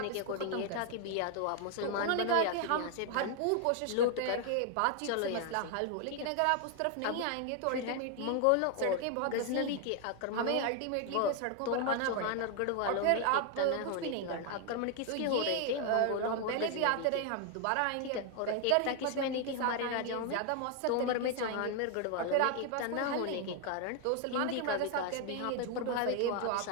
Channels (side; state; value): both; different; correlation 0.00